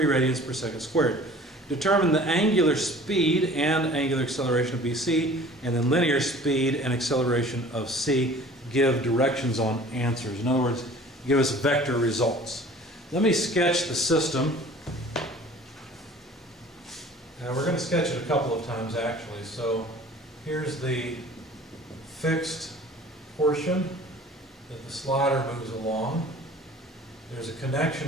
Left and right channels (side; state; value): both; normal; correlation 0.47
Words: radians per second squared. Determine the angular speed and angular acceleration of BC, and then linear speed and acceleration of C. Give directions on answers. In other words, give us vector results. Let me sketch the system. Now we're going to sketch it a couple of times actually. So here's the fixed portion that the slider moves along. There's a